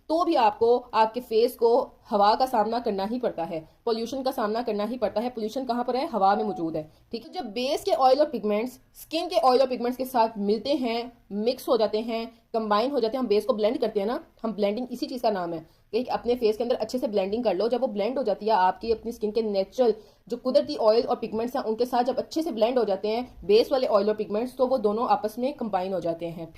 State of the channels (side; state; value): both; identical; correlation 1.00